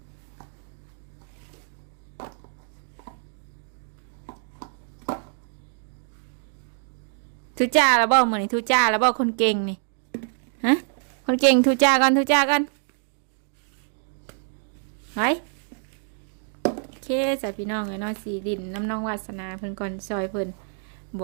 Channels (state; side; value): silent; left; 60 dB below the other